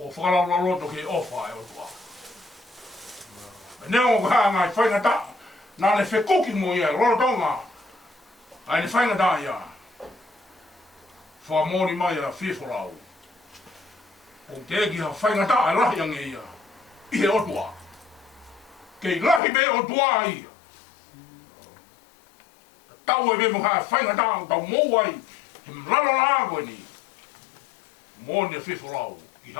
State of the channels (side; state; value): right; drops out; at 19.4 s